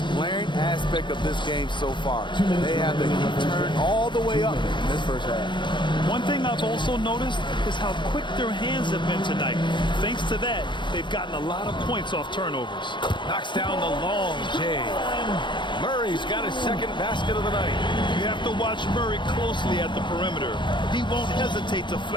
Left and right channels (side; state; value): right; late; 0.23 ms